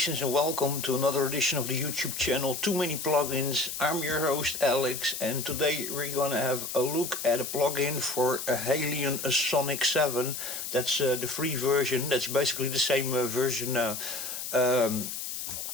and welcome to another edition of the YouTube channel Too Many Plugins. I'm your host Alex, and today we're gonna have a look at a plugin for a HALion Sonic 7. That's the free version. That's basically the same version,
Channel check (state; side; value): noise; left; hiss, 6 dB below the sound